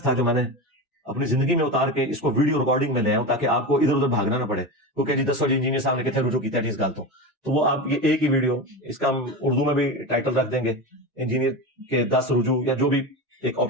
تھا جو میں نے اپنی زندگی میں اتار کے اس کو ویڈیو ریکارڈنگ میں لے آؤں, تاکہ آپ کو ادھر ادھر بھاگنا نہ پڑے. کیونکہ جی 10 انجینئر صاحب نے کتنے رجوع کیا ہے اس گل تو وہ آپ یہ ایک ہی ویڈیو, اس کا ہم اردو میں بھی ٹائٹل رکھ دیں گے, انجینئر کے 10 رجوع, یا جو بھی ایک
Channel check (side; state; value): both; normal; correlation 0.23